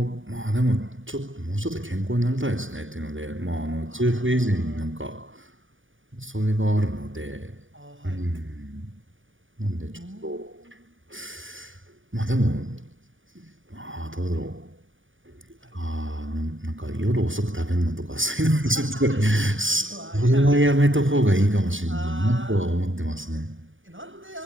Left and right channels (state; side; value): late; left; 0.57 ms